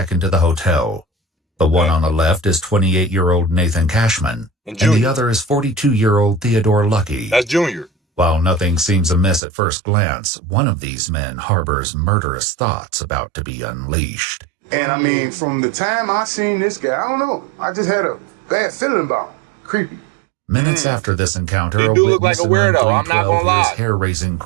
into the hotel. The one on the left is 28-year-old Nathan Cashman, and the other is 42-year-old Theodore Lucky. That's Junior. While nothing seems amiss at first glance, one of these men harbors murderous thoughts about to be unleashed. And I mean, from the time I seen this guy, I don't know, I just had a bad feeling about him. Creepy. Minutes after this encounter, He a do look like witness a weirdo, I'm not gonna lie. hears hair-raising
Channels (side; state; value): left; drops out; at 9.4 s